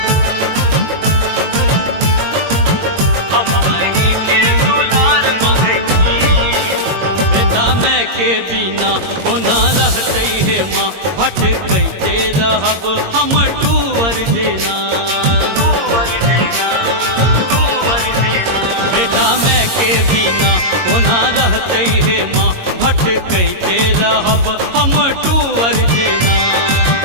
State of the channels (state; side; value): late; left; 22 ms